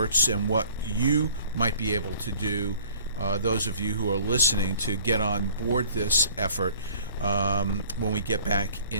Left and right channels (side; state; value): both; inverted; correlation -0.52